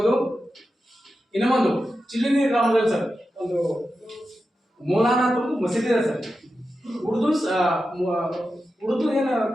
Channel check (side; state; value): both; normal; correlation 0.91